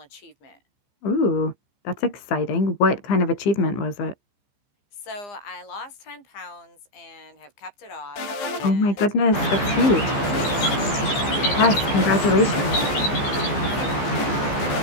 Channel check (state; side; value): late; right; 14 ms